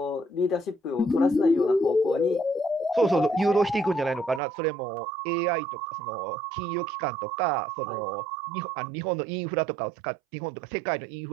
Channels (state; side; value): drops out; left; at 4.4 s